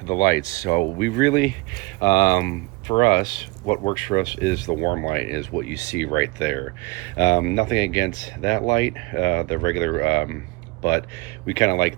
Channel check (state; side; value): quieter; left; 25.3 dB